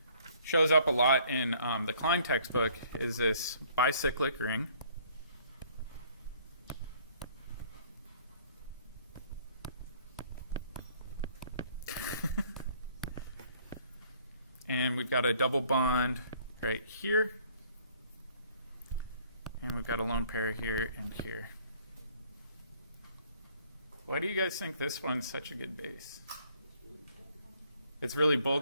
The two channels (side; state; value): both; inverted; correlation -0.60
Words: shows up a lot in the Klein textbook is this bicyclic ring. And we've got a double bond right here. And we've got a lone pair here and here. Why do you guys think this one's such a good base? It's really